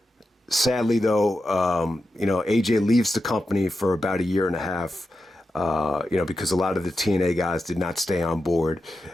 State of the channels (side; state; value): both; normal; correlation 0.89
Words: Sadly, though, AJ leaves the company for about 1.5 years, because a lot of the TNA guys did not stay on board.